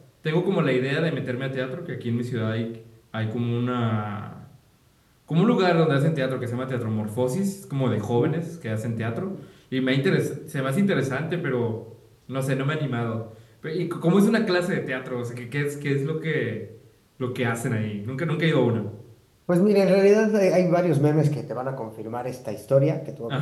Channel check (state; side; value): identical; both; correlation 1.00